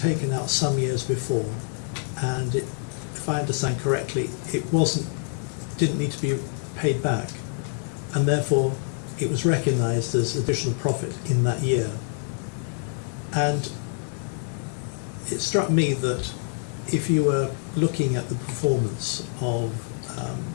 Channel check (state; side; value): silent; right; 57 dB below the other